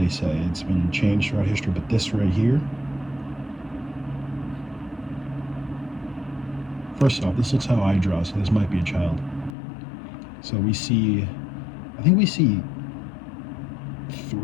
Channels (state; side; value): drops out; right; at 9.6 s